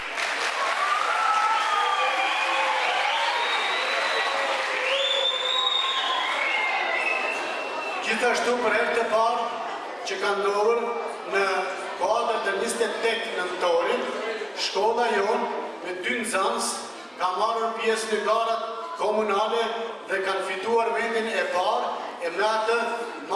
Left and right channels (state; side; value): identical; both; correlation 1.00